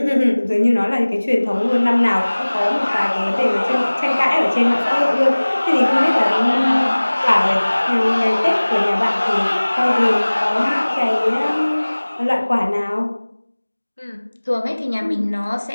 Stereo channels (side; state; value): both; inverted; correlation -1.00